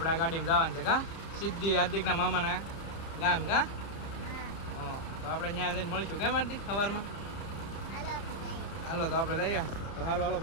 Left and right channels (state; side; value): late; right; 30 ms